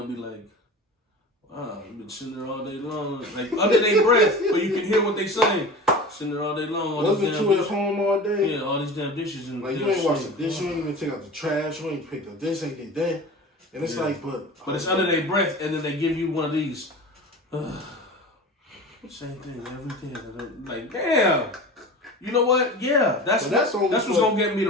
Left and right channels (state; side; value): normal; both; correlation 0.34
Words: be like, "Wow, you've been sitting there all day long," like under their breath, but you can hear what they saying. Sitting there all day long. Wasn't you at home all day? Yeah, all these damn dishes and like you ain't wash the dish, you ain't even take out the trash, you ain't pick up this, ain't did that, and it's like, but it's under their breath, and then they give you one of these. Same thing every day. Like, damn. You know what? Yeah, that's what's gonna get me